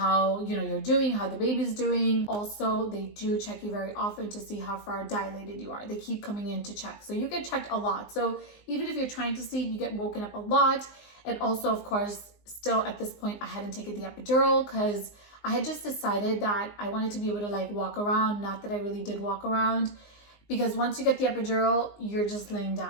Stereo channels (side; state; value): right; late; 19 ms